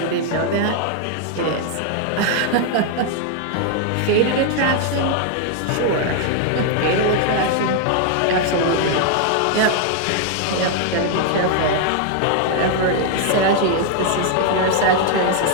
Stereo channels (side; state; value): both; different; correlation 0.00